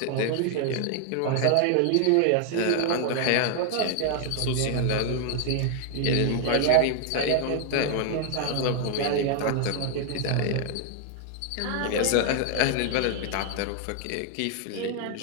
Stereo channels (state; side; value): different; both; correlation 0.00